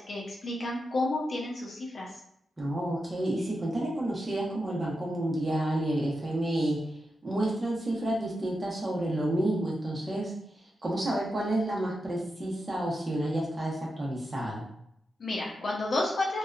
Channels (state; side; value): normal; both; correlation 0.88